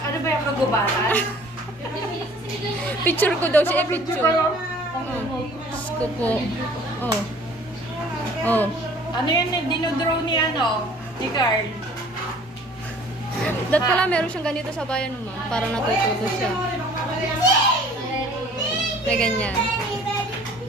ba yung kagubaran? Picture ko daw siya. Picture. Diyos ko po. Oh. Oh. Ano yun? Dinodraw ni ni Carl. Dat pala meron siyang ganito sa bayan, ma'am. Para natututo siya. May ganyan.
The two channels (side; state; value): both; normal; correlation 0.51